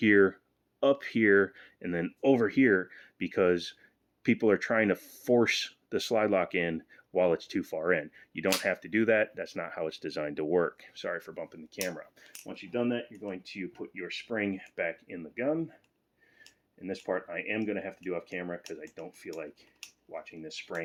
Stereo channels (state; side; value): identical; both; correlation 1.00